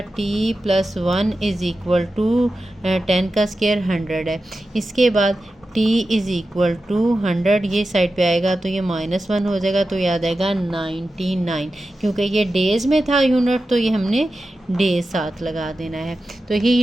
t + 1 इज़ इक्वल टू 10 का स्क्वायर 100 है। इसके बाद t इज़ इक्वल टू 100 ये साइड पे आएगा तो ये -1 हो जाएगा, तो ये आ जाएगा 99। क्योंकि ये डेज़ में था यूनिट तो ये हमने डेज साथ लगा देना है। तो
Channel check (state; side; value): normal; both; correlation 0.92